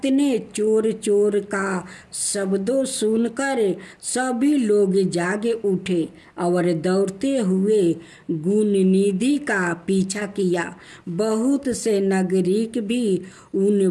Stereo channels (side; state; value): both; identical; correlation 1.00